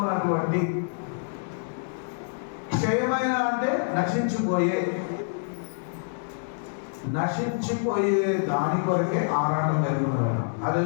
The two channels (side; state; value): right; silent; digital silence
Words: క్షయమైన అంటే నశించిపోయే దాని కొరకే ఆరాటం కలిగినారు.